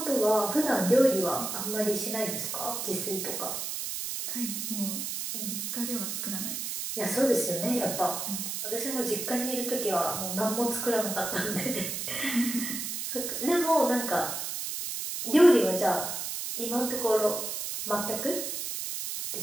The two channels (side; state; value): right; noise; hiss, 4 dB below the sound